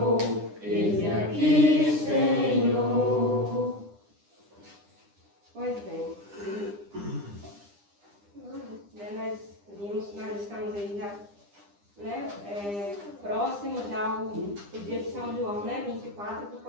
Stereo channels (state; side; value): late; left; 9.9 ms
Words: Eis-me aqui, Senhor. Pois bem, nós estamos aí já, né, próximo já ao dia de São João, né, 24, que